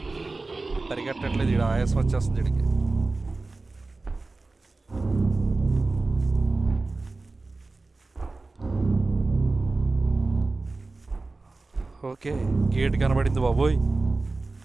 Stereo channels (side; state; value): left; quieter; 3.4 dB